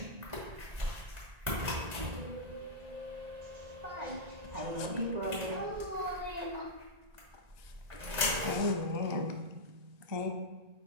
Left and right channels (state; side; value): late; left; 1.9 ms